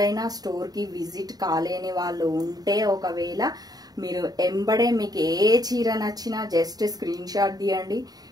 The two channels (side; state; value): left; late; 0.19 ms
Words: స్టోర్కి విజిట్ కాలేని వాళ్ళు ఉంటే ఒకవేళ మీరు ఎంబడే మీకు ఏ చీర నచ్చినా జస్ట్ స్క్రీన్ షాట్ తీయండి.